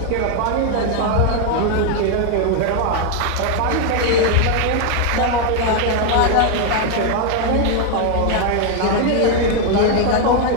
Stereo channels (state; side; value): different; both; correlation 0.01